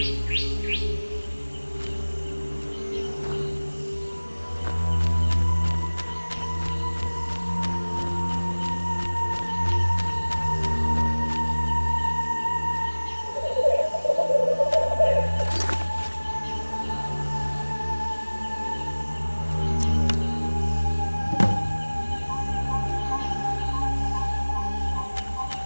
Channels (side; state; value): both; inverted; correlation -1.00